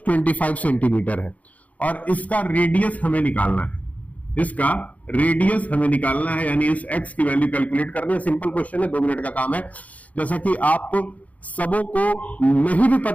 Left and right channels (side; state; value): right; late; 0.071 ms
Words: 25 सेंटीमीटर है और इसका रेडियस हमें निकालना है। इसका रेडियस हमें निकालना है, यानी इस x की वैल्यू कैलकुलेट करनी है। सिंपल क्वेश्चन है, 2 मिनट का काम है। जैसा कि आप सबों को नहीं भी